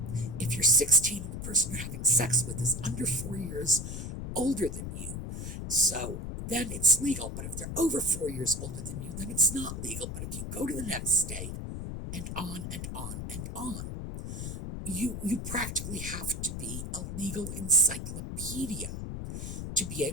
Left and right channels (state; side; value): noise; left; rumble, 6 dB below the sound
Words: if you're 16 and the person you're having sex with is under 4 years older than you, so then it's legal. But if they're over 4 years older than you, then it's not legal. But if you go to the next state, and on and on and on, you practically have to be a legal encyclopedia to be